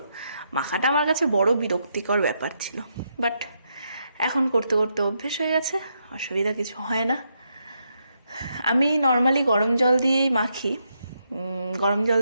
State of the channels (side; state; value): both; inverted; correlation -0.80